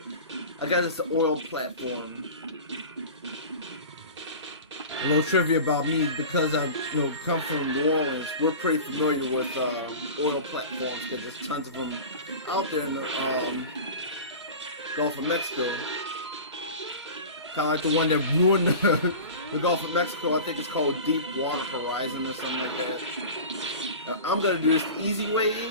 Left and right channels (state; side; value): inverted; both; correlation -0.34